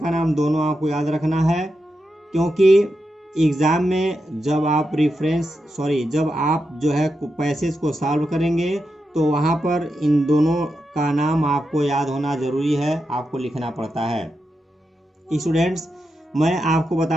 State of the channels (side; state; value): both; normal; correlation 0.87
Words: नाम दोनों आपको याद रखना है, क्योंकि एग्ज़ाम में जब आप जो है पैसेज को सॉल्व करेंगे तो वहाँ पर इन दोनों का नाम आपको याद होना ज़रूरी है, आपको लिखना पड़ता है। स्टूडेंट्स, मैं आपको